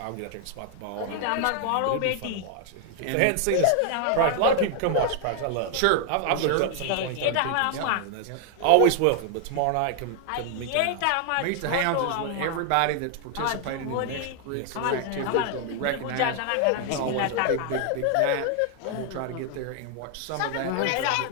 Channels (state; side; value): different; both; correlation 0.00